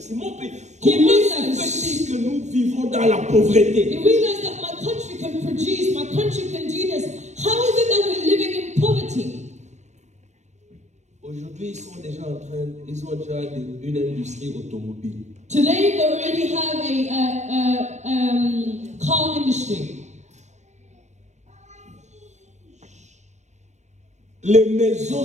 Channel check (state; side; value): late; left; 0.33 ms